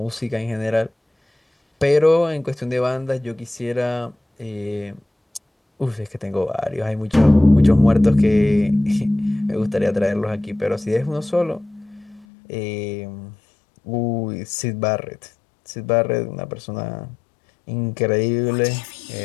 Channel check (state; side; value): drops out; right; at 12.2 s